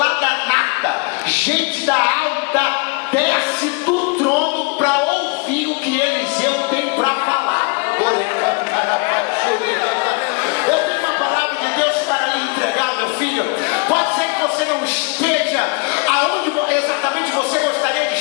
da nata, gente da alta, desce do trono para ouvir o que Eliseu tem para falar. Eu tenho uma palavra de Deus para lhe entregar, meu filho. Pode ser que você não esteja aonde exatamente você gostaria de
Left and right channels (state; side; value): quieter; right; 31.0 dB